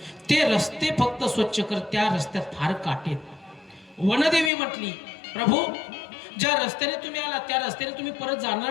ते रस्ते फक्त स्वच्छ कर, त्या रस्त्यात फार काटे आहेत. वनदेवी म्हटली प्रभू ज्या रस्त्याने तुम्ही आला त्या रस्त्याने तुम्ही परत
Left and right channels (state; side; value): drops out; right; at 4.5 s